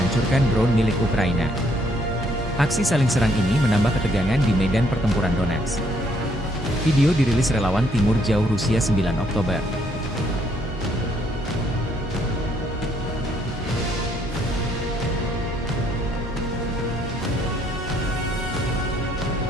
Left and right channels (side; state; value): both; normal; correlation 0.69